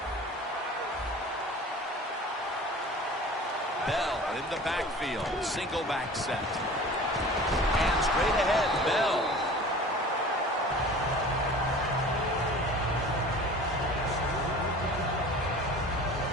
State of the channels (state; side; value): normal; both; correlation 0.42